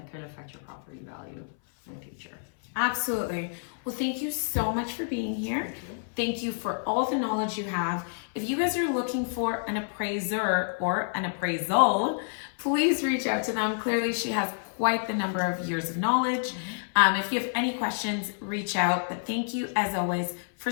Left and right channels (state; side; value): silent; right; 58 dB below the other